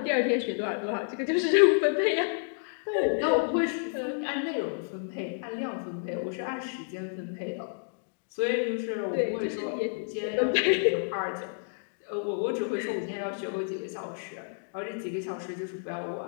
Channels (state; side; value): silent; right; digital silence